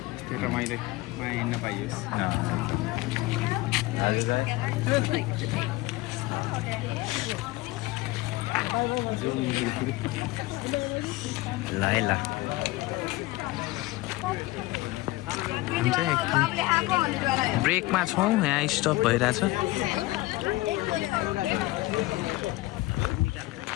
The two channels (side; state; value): right; quieter; 19.4 dB